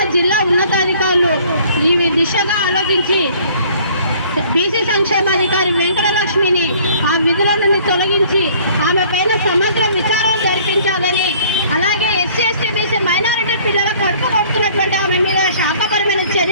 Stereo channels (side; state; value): both; inverted; correlation -0.55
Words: జిల్లా ఉన్నతాధికారులు ఈ దిశగా ఆలోచించి బీసీ సంక్షేమాధికారి వెంకటలక్ష్మిని ఆ విధుల నుండి తొలగించి ఆమె పైన సమగ్ర విచారణ జరిపించాలని, అలాగే ఎస్సీ ఎస్టీ బీసీ మైనారిటీ పిల్లల కడుపు కొడుతున్నటువంటి ఆమె మీద శాఖపరమైన